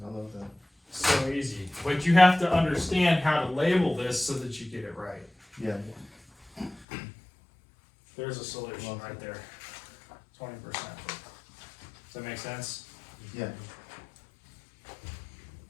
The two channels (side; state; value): right; drops out; at 6.9 s